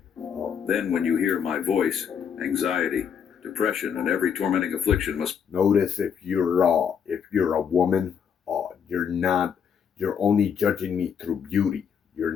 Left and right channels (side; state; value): right; quieter; 7.5 dB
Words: Then when you hear my voice, anxiety, depression, and every tormenting affliction must... Notice if you're a woman, you're only judging me through beauty. You're